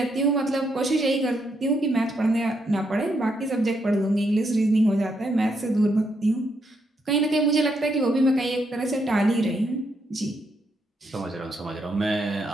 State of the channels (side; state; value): both; normal; correlation 0.78